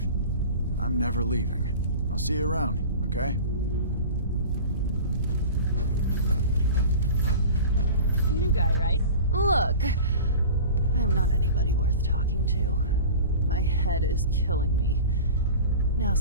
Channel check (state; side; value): inverted; both; correlation -0.36